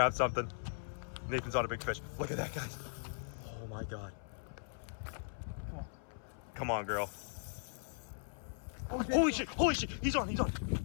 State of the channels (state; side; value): silent; right; 52 dB below the other